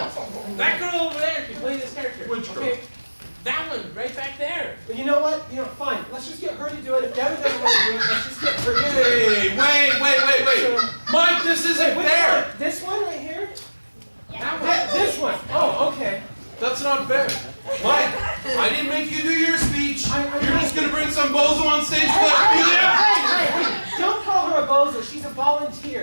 That girl over there can play this character. Which girl? Okay. That one, right back there. But you know what? Fine. Let's just get her to do it. If Devin doesn't want to do it, let's just get her to do it. Hey, wait. Mike, this isn't Which fair. one? This one right here? That one. This one. Oh, okay. That's not fair. Mike, I didn't make you do your speech. You're just going to bring some bozo on stage to let me there. Hey. Don't call her a bozo. She's a volunteer.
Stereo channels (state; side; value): inverted; both; correlation -1.00